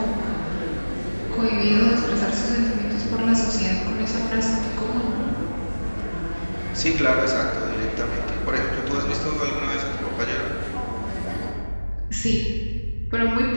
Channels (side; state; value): both; inverted; correlation -1.00